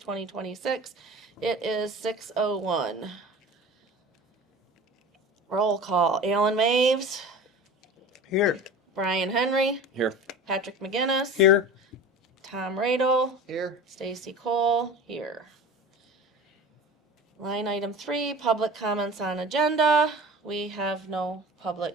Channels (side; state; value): both; normal; correlation 0.36